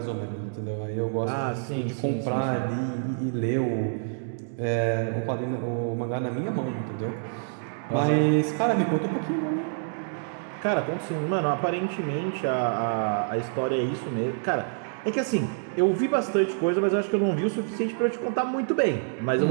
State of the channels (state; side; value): silent; left; digital silence